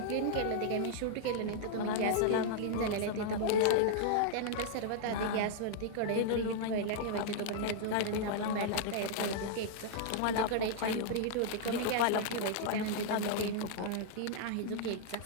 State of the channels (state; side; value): different; both; correlation -0.01